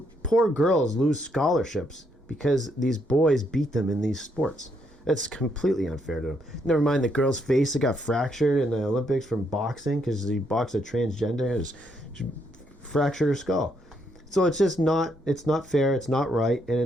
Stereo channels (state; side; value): normal; both; correlation 0.75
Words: Poor girls lose scholarships because these boys beat them in these sports. That's completely unfair to them. Never mind the girl's face that got fractured in the Olympics from boxing because he boxed a transgender and she fractured her skull. So it's just not fair, it's not right,